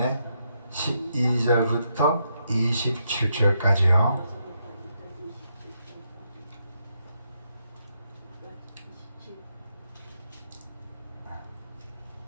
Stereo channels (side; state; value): both; inverted; correlation -0.80